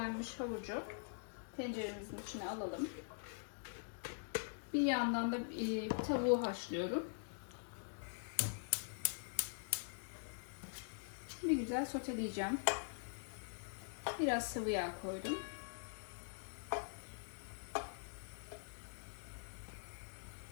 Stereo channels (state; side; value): silent; right; digital silence